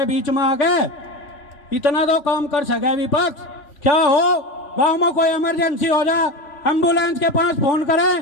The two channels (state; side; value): late; right; 3.1 ms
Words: बीच में आके, इतना तो काम कर सके विपक्ष। क्या हो, गांव में कोई इमरजेंसी हो जा, एम्बुलेंस के पास फोन करें,